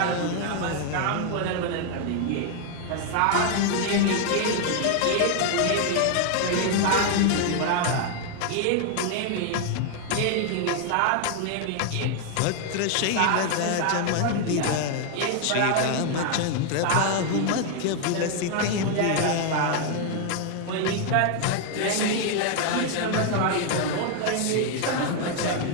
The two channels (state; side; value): different; both; correlation 0.00